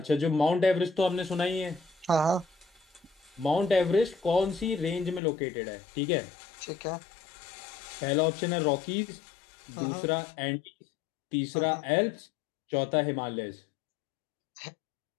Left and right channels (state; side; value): drops out; right; at 5.2 s